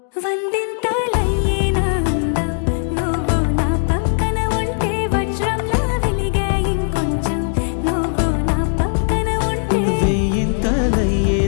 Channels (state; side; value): silent; right; digital silence